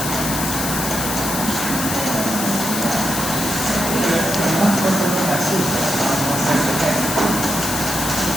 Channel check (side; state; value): left; noise; hiss, 3 dB below the sound